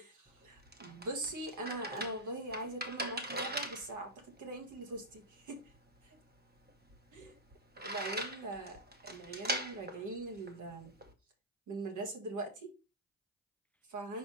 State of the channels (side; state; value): both; normal; correlation -0.08